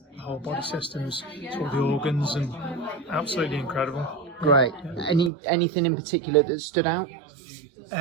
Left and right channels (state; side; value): drops out; left; at 5.3 s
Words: body systems to all the organs, and absolutely incredible. Great. Yeah. Anything in particular that stood out?